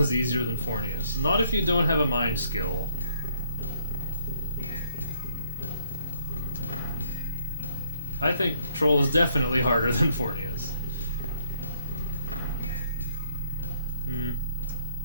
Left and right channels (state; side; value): inverted; both; correlation -0.69